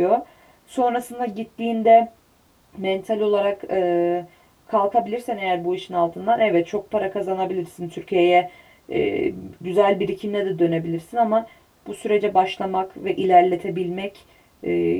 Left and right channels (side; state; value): both; identical; correlation 1.00